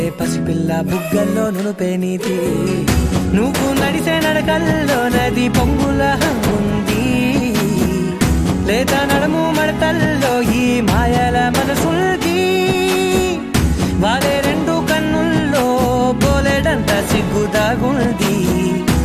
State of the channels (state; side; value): identical; both; correlation 1.00